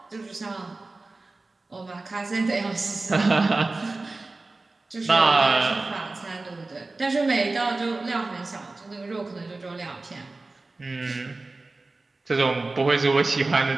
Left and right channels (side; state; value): left; quieter; 3.3 dB